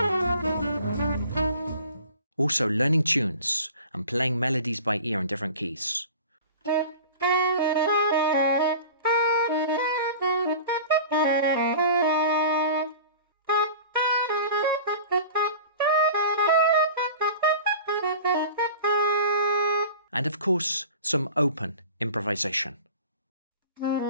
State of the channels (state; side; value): inverted; both; correlation -0.40